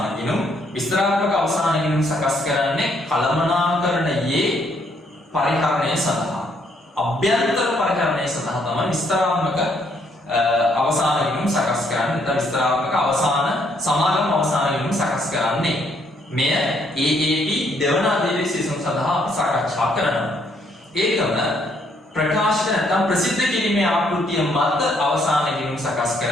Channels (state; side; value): normal; both; correlation 0.70